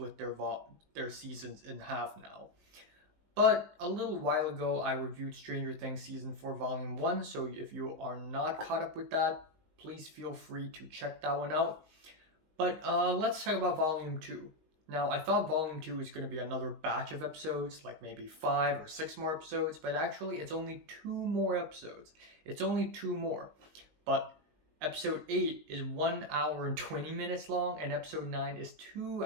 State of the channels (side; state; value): left; late; 19 ms